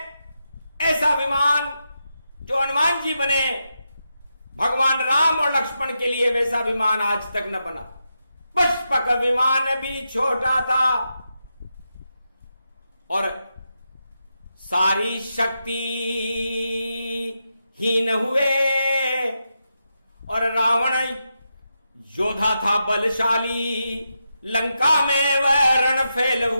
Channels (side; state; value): both; inverted; correlation -0.87